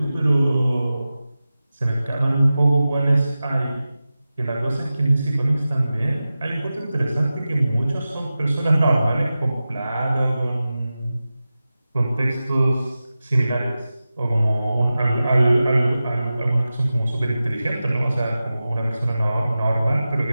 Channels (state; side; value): inverted; both; correlation -0.95